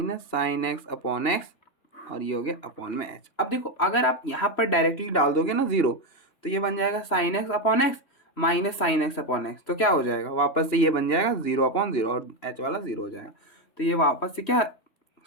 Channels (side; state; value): right; late; 3.1 ms